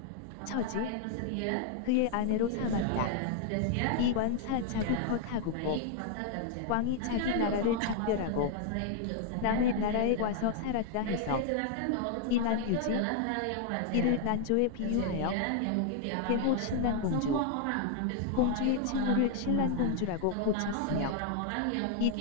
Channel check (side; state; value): both; different; correlation -0.01